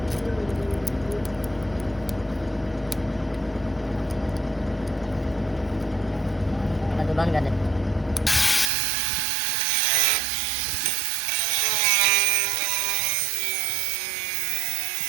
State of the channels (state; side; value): drops out; left; at 8.7 s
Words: तो बंद कर दे।